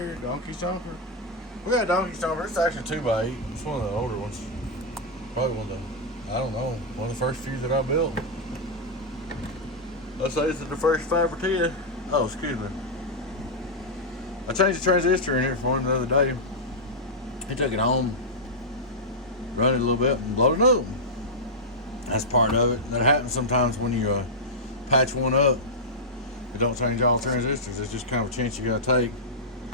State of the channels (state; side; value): normal; both; correlation -0.07